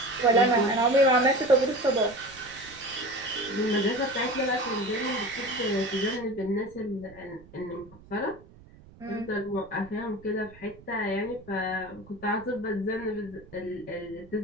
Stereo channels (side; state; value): right; noise; rumble, 22 dB below the sound